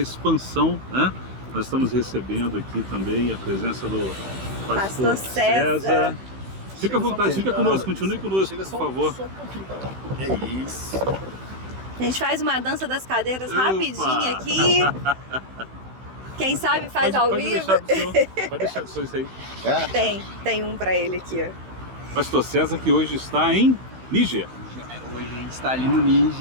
né? Nós estamos recebendo aqui também a presença do pastor César. Fica à vontade, fica conosco, continue conosco, por favor. Só um pouquinho. É isso. A gente faz uma dança das cadeiras rapidinho aqui. Quem sabe faz ao vivo. Pode deixar do senhor isso aí. Tem um pra ele aqui, ó. Pastor César, que hoje está em Níger. Hoje a gente está ali no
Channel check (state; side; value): late; left; 16 ms